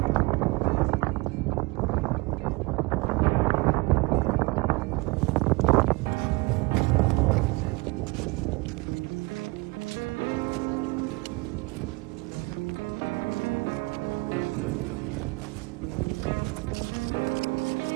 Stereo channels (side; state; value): left; quieter; 24.8 dB